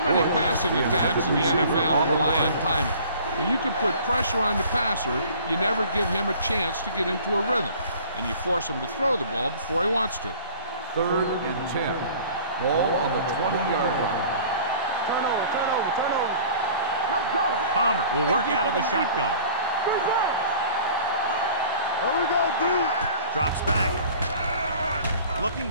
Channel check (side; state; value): both; inverted; correlation -0.48